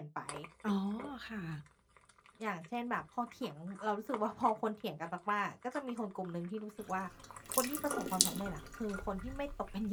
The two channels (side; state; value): both; identical; correlation 1.00